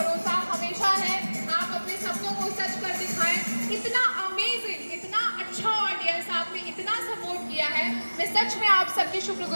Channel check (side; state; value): both; inverted; correlation -1.00